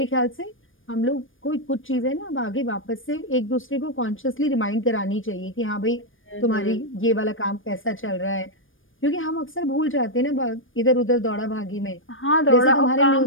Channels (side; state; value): right; late; 0.58 ms